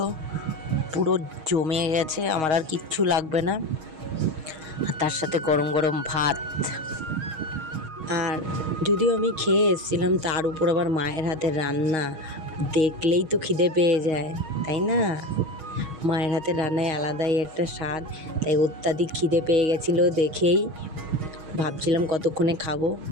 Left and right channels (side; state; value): left; late; 6.3 ms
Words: পুরো জমে গেছে, আমার আর কিচ্ছু লাগবে না। তার সাথে গরম গরম ভাত। আর যদিও আমি খেয়ে এসেছিলাম, তার উপর আবার মায়ের হাতের রান্না দেখলেই তো খিদে পেয়ে যায়, তাই না? মায়ের হাতের রান্নায় আলাদাই একটা স্বাদ, তাই অত্যাধিক খিদে পেয়ে গেছিলো দেখেই ভাবছিলাম কতক্ষণে খাবো।